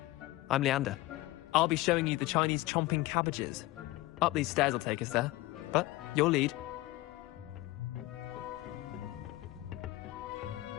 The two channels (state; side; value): quieter; right; 18.4 dB